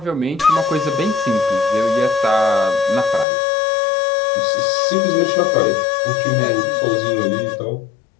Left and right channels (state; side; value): drops out; right; at 3.2 s